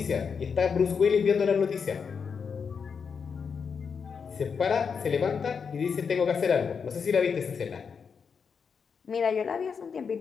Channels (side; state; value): right; quieter; 6.1 dB